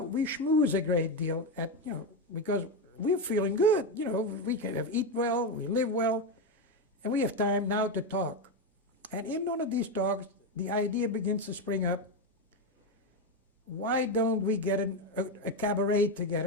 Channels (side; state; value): both; normal; correlation 0.10